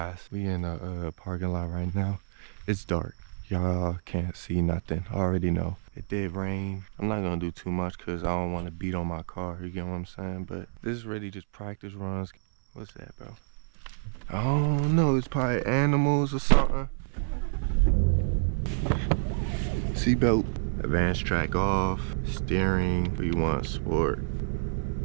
We in a parking lot right now. It's dark. Y'all can't see nothing. I already know. It did rain. I'm not gonna do too much because I don't want to beat on my car. You get what I'm saying? But this is really just practice runs. What's that, bro? I don't know. It's probably animals or something. Seatbelt. Advanced track off. Steering. We want sport.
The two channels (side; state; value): left; silent; 59 dB below the other